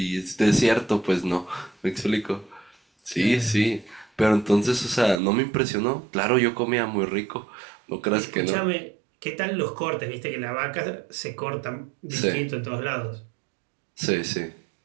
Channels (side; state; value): left; drops out; at 5.2 s